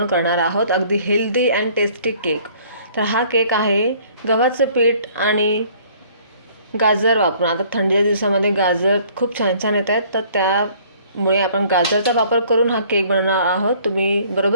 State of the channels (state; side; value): inverted; both; correlation -0.56